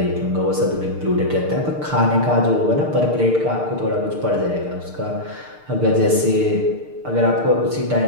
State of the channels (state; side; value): late; left; 6.6 ms